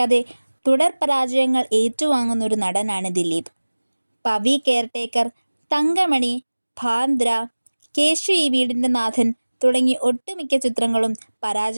തുടർ പരാജയങ്ങൾ ഏറ്റുവാങ്ങുന്ന ഒരു നടനാണ് ദിലീപ്. പവി കെയർടേക്കർ, തങ്കമണി, ബാന്ദ്ര, കേശു ഈ വീടിൻ്റെ നാഥൻ തുടങ്ങി ഒട്ടുമിക്ക ചിത്രങ്ങളും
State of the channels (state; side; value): inverted; both; correlation -1.00